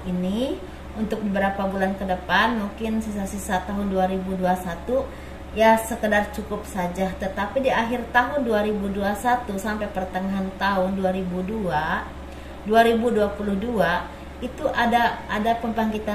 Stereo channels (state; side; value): identical; both; correlation 1.00